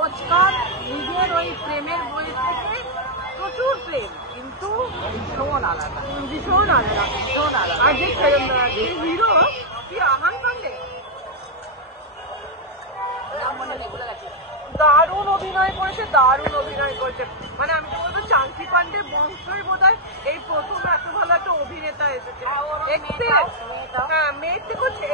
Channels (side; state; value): both; normal; correlation -0.03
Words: নিজের ওই প্রেমের বই থেকে প্রচুর প্রেম, কিন্তু ভীষণ আলাদা, ভীষণ আলাদা, ভীষণ আলাদা। আর যে হিরো কি আহান পান্ডে, দারুণ অভিনয় করেছে, দারুণ অভিনয় করেছে। মানে আমি তো বলবো চাঙ্কি পান্ডে বংশই বোধহয় এই প্রথম এত ভালো একটা অভিনেতা এসেছে। হ্যাঁ, মেয়ের থেকেও